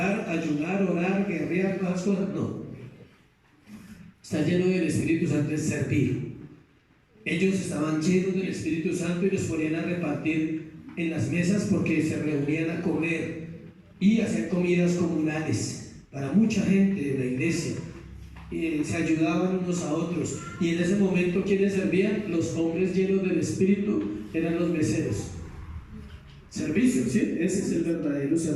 ayunar, orar, guerrear, todas las cosas? No. Estar lleno del Espíritu Santo es servir. Ellos estaban llenos del Espíritu Santo y los ponían a repartir en las mesas porque se reunían a comer y hacer comidas comunales para mucha gente de la iglesia. Se ayudaban unos a otros, y en ese momento ¿quiénes servían? Los hombres llenos del Espíritu eran los meseros. Servicio, ¿sí? Ese es el verdadero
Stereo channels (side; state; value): both; identical; correlation 1.00